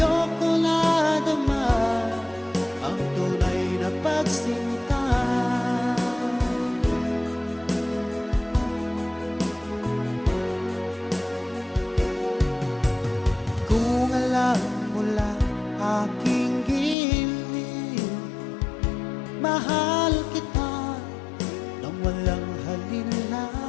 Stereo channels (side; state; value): right; drops out; at 16.9 s